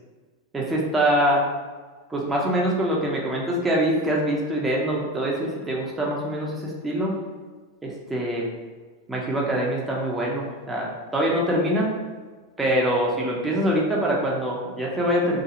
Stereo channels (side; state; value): both; normal; correlation 0.33